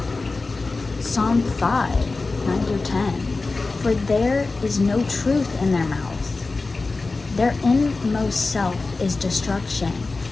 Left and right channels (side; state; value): right; quieter; 3.7 dB